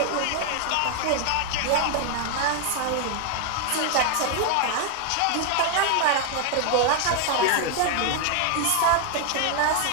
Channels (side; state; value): both; different; correlation 0.00